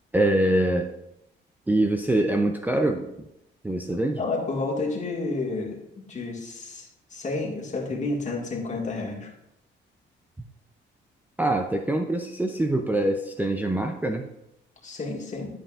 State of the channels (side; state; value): both; normal; correlation 0.75